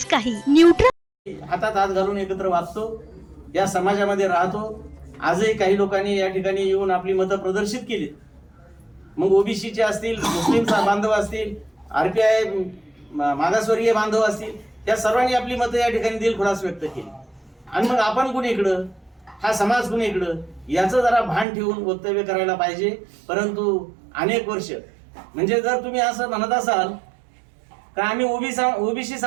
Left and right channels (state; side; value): drops out; left; at 21.5 s